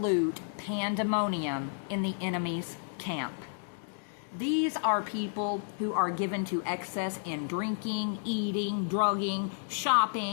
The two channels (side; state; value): right; silent; digital silence